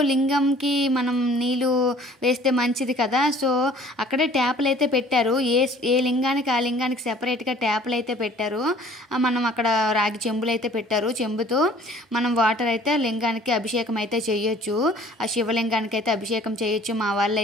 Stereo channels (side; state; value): both; normal; correlation 0.52